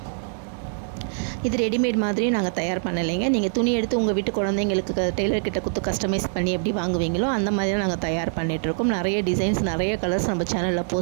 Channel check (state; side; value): silent; left; 63 dB below the other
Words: இது ரெடிமேட் மாதிரி நாங்கள் தயார் பண்ணலைங்க. நீங்கள் துணி எடுத்து உங்கள் வீட்டு குழந்தைங்களுக்கு டெய்லர்கிட்ட கொடுத்து கஸ்டமைஸ் பண்ணி எப்படி வாங்குவீங்களோ அந்த மாதிரி நாங்கள் தயார் பண்ணிகிட்ருக்கோம். நிறைய டிசைன்ஸ், நிறைய கலர்ஸ் நம்ம சேனலில்